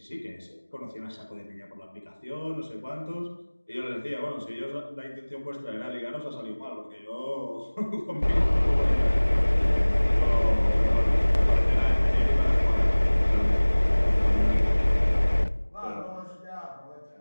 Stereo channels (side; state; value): both; inverted; correlation -1.00